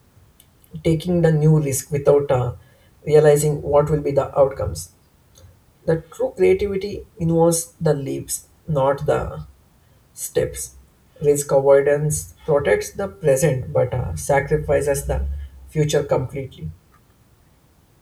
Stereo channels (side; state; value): both; identical; correlation 1.00